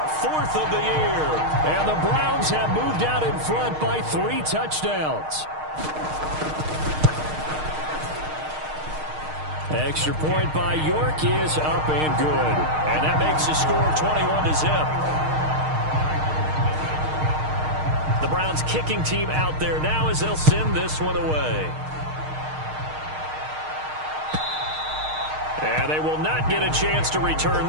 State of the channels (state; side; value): late; left; 6.5 ms